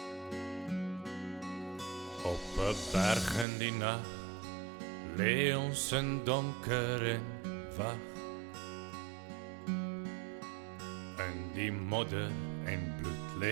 Op 'n berg in die nag lê ons in donker en wag. In die modder en bloed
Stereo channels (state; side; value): drops out; left; at 3.5 s